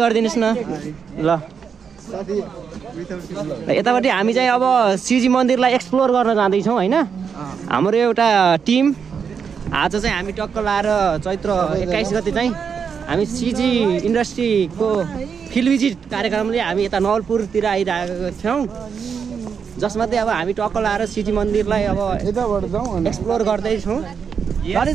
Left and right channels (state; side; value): quieter; left; 6.6 dB